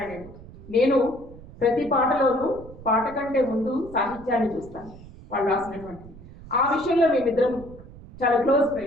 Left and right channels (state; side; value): noise; right; rumble, 18 dB below the sound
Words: నేను ప్రతి పాటలోనూ పాట కంటే ముందు సాహిత్యాన్ని చూస్తాను, వాళ్ళు రాసినటువంటి. ఆ విషయంలో మేమిద్దరం చాలా క్లోజ్